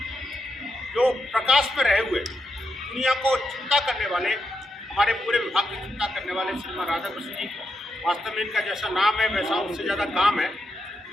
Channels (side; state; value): both; normal; correlation 0.84